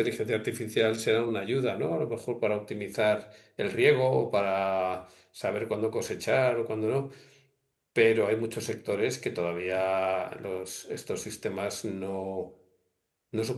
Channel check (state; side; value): identical; both; correlation 1.00